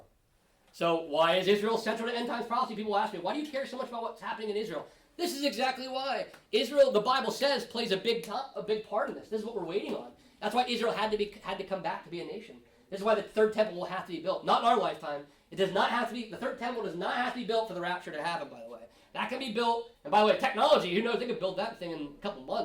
So why is Israel central to end times prophecy? People ask me, why do you care so much about what's happening in Israel? This is exactly why. Israel, the Bible says, plays a big part in this. This is what we're waiting on. That's why Israel had to come back to be a nation. This is why the third temple will have to be built. Not in our lifetime. It does not have to be, the third temple does not have to be built for the rapture to happen, by the way. That can be built, and by the way, technology, who knows, they could build that thing in a couple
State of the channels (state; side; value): identical; both; correlation 1.00